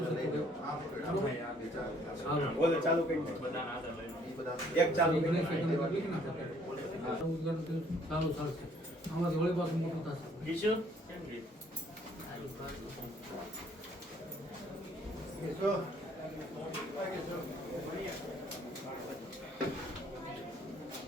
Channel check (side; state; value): both; normal; correlation 0.62